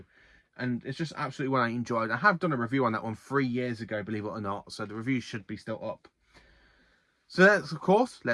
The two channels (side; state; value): both; identical; correlation 1.00